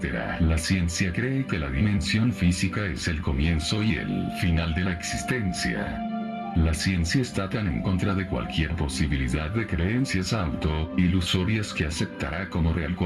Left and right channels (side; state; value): both; identical; correlation 1.00